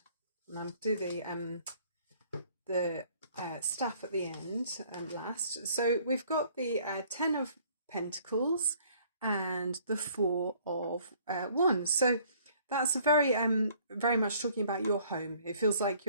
and I'll do the staff at the end and last. So we've got the Ten of Pentacles and the Four of Wands. So that's very much talking about your home. It feels like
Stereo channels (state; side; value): inverted; both; correlation -0.59